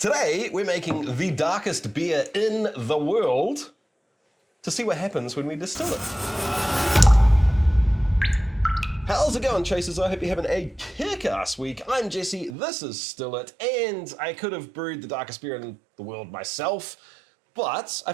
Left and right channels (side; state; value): left; drops out; at 12.6 s